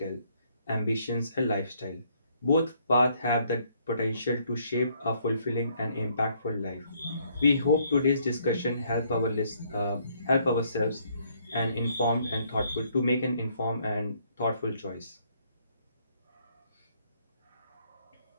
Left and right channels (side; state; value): both; inverted; correlation -0.68